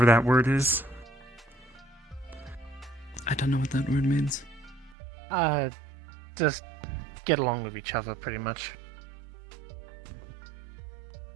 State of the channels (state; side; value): drops out; left; at 5.0 s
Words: that word is. I don't know what that word means. Just get along with each other, pretty much.